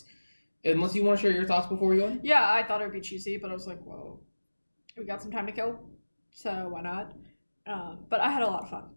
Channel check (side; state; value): both; inverted; correlation -1.00